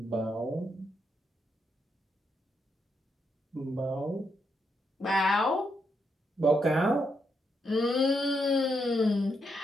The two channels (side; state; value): both; normal; correlation 0.80